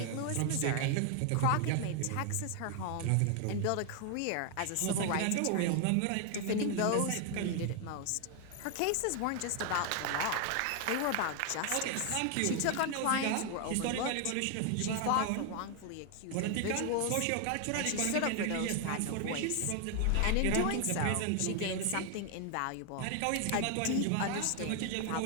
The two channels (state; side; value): different; both; correlation 0.00